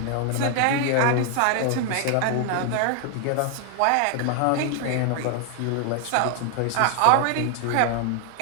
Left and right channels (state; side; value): different; both; correlation 0.00